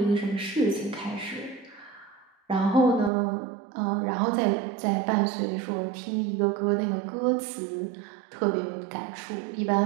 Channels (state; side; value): drops out; left; at 3.1 s